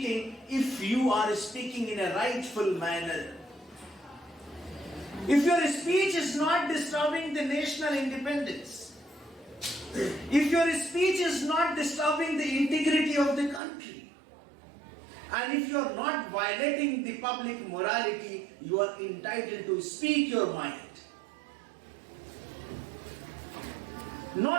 if you are speaking in a rightful manner. If your speech is not disturbing the national independence, if your speech is not disturbing the integrity of the country, and if you are not violating the public morality, you are entitled to speak your mind.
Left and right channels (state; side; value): drops out; left; at 13.6 s